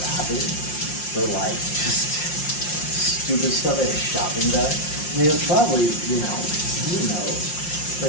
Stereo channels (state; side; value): late; right; 5.6 ms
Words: grab it for, like, just stupid stuff at a shopping bag. I mean, it's probably, who knows.